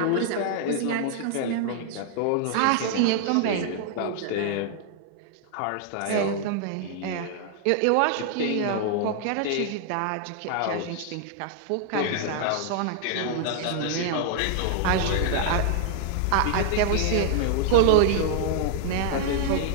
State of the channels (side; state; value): both; different; correlation -0.01